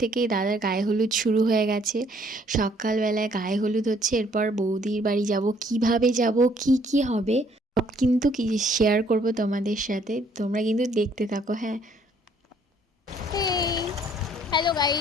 দাদার গায়ে হলুদ শুরু হয়ে গেছে। সকালবেলায় গায়ে হলুদ হচ্ছে, এরপর বৌদির বাড়ি যাব, কিভাবে যাব, কি কি হবে সব কিন্তু কি শেয়ার করব তোমাদের সাথে। তোমরা কিন্তু দেখতে থাকো। হ্যাঁ, হ্যালো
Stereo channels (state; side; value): normal; both; correlation 0.63